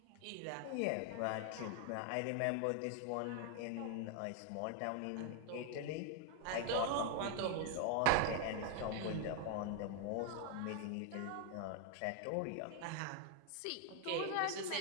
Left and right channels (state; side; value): different; both; correlation 0.00